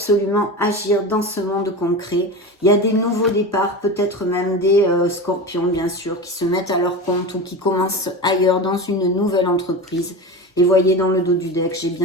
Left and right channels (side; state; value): both; normal; correlation 0.26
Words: agir dans ce monde concret. Il y a des nouveaux départs, peut-être même des scorpions, bien sûr, qui se mettent à leur compte ou qui commencent ailleurs dans une nouvelle entreprise. Et voyez, dans le dos du deck, j'ai